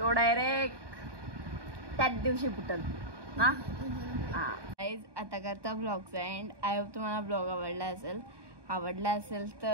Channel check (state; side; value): late; left; 1.2 ms